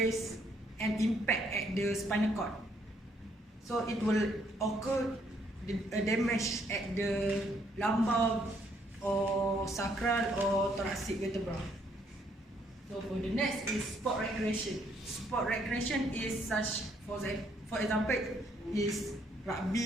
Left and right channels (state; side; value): normal; both; correlation 0.69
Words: and impact at the spinal cord. So it will occur a damage at the lumbar or sacral or thoracic vertebra. So for the next is sport recreation. Sport recreation is such, for example, is